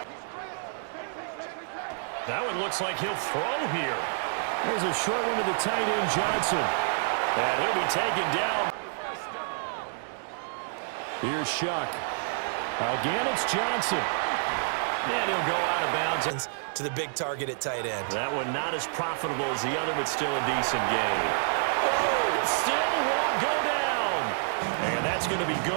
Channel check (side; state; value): left; silent; digital silence